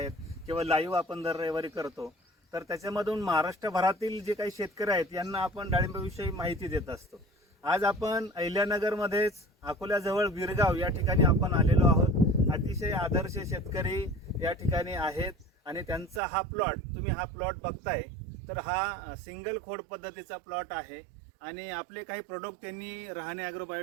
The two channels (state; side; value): drops out; left; at 16.2 s